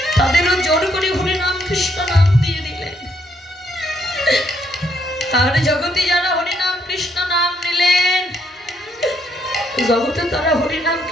তাদেরও জোর করে হরি নাম কৃষ্ণ নাম দিয়ে দিলেন। আর জগতে যারা হরি নাম কৃষ্ণ নাম নিলেন, জগতে তারা হরি নাম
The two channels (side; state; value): both; normal; correlation 0.72